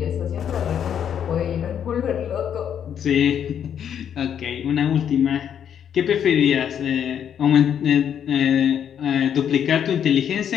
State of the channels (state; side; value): quieter; right; 8.8 dB